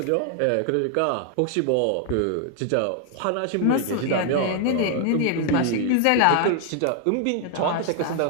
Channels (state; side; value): different; both; correlation 0.00